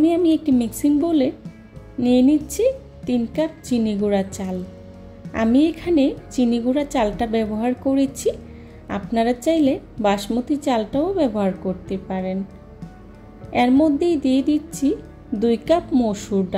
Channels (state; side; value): identical; both; correlation 1.00